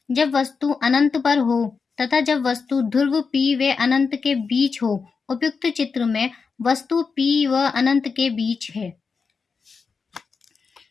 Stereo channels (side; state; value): right; quieter; 5.1 dB